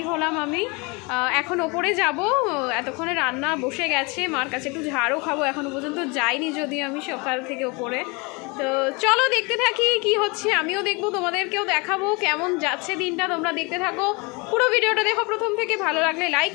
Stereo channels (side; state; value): right; quieter; 28.6 dB